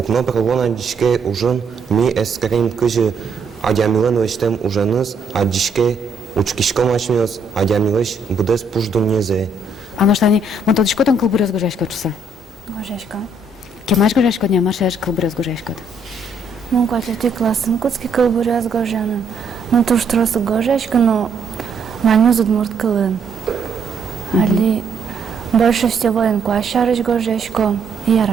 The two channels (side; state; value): left; quieter; 3.3 dB